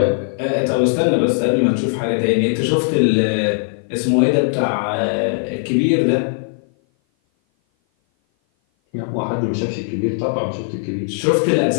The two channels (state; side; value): silent; right; 57 dB below the other